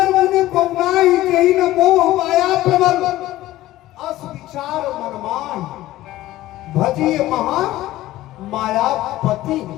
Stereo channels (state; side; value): quieter; right; 15.8 dB